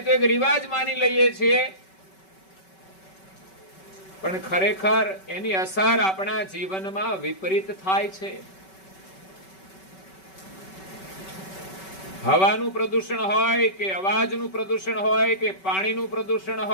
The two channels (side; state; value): right; late; 5.3 ms